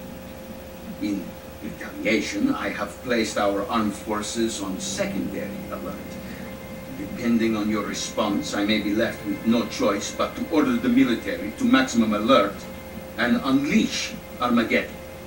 In retaliation, I have placed our armed forces on secondary alert. Depending on your response, I may be left with no choice but to order the military to maximum alert and unleash Armageddon.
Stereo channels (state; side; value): identical; both; correlation 1.00